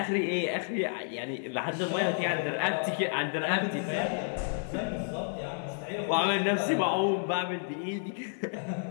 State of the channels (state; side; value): silent; right; 57 dB below the other